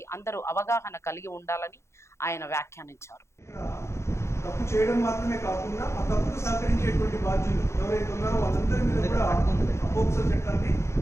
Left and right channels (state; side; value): late; right; 0.13 ms